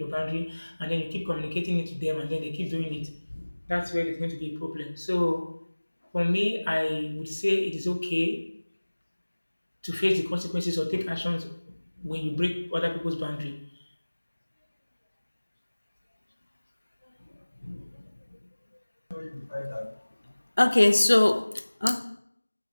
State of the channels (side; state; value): both; inverted; correlation -1.00